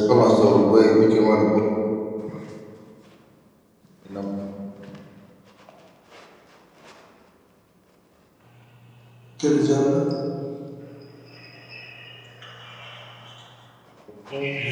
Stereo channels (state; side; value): identical; both; correlation 1.00